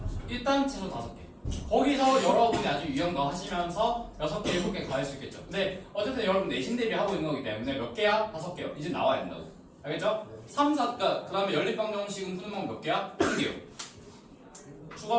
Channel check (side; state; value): both; identical; correlation 1.00